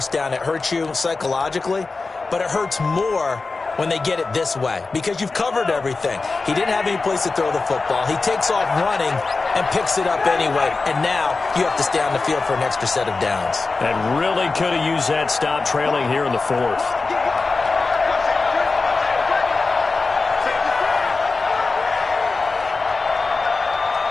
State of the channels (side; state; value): right; quieter; 3.9 dB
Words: down, it hurts you psychologically, but it hurts more when they get it this way, because you've covered everything. He didn't have any place to throw the football. He takes off running and picks it up anyway, and now you have to stay on the field for an extra set of downs. And really could have used that stop trailing here in the 4th.